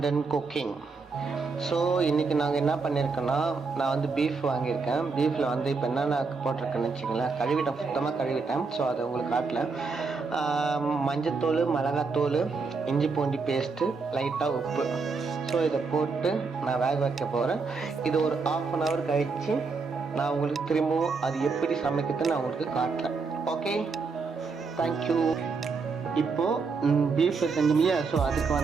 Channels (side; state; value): left; quieter; 4.5 dB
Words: and cooking. So இன்றைக்கி நாங்கள் என்ன பண்ணியிருக்கோன்னா, நான் வந்து பீஃப் வாங்கியிருக்கேன். பீஃபில் வந்து இப்போ என்னென்ன போட்டிருக்கேன்னு வச்சிங்களேன், கழுவிட்டேன், சுத்தமாக கழுவிட்டேன். ஸோ அதை உங்களுக்கு காட்டல. மஞ்சத்தூள், மிளகாத்தூள், இஞ்சி பூண்டி பேஸ்ட்டு, லைட்டாக உப்பு. ஸோ இதை போட்டு நான் வேக வைக்க போகிறேன். இது ஒரு 1/2 hour கழித்து நான் உங்களுக்கு திரும்பவும் அது எப்படி சமைக்கிறதுன்னு நான் உங்களுக்கு காட்டுறேன். Okay, thank you. இப்போது பீஃப் செஞ்சோம்லையா, ஸோ அதுக்கு